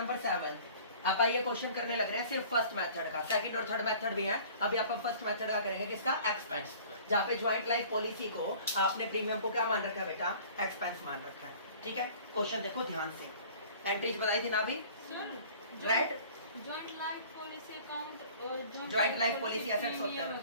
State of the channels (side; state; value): both; inverted; correlation -0.48